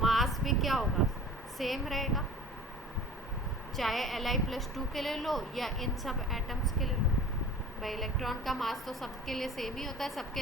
भी क्या होगा, सेम रहेगा, चाहे Li+2 के ले लो या इन सब एटम्स के ले लो। भाई इलेक्ट्रॉन का मास तो सबके लिए सेम ही होता है, सबके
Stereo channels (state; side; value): normal; both; correlation 0.41